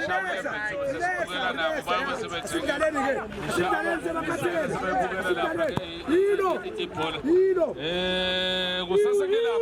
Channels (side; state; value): both; identical; correlation 1.00